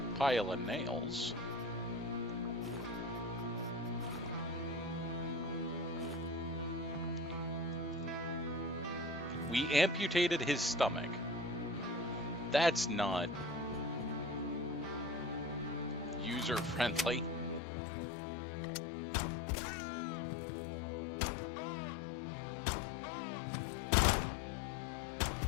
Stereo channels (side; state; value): right; drops out; at 17.6 s